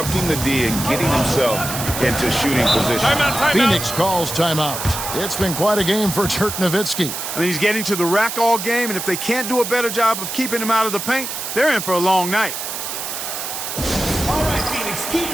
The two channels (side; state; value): right; noise; hiss, 5 dB below the sound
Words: the D and getting himself into shooting position. Phoenix calls timeout. It's been quite a game for Dirk Nowitzki. I mean, he's getting to the rack all game, and if they can't do a better job of keeping him out of the paint, they're in for a long night. All right, Phoenix, keep